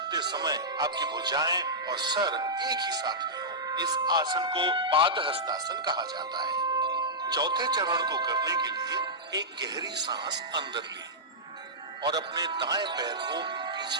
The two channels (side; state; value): both; normal; correlation -0.13